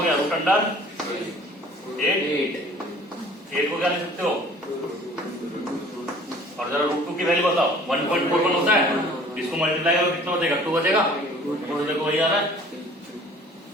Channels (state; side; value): normal; both; correlation 0.50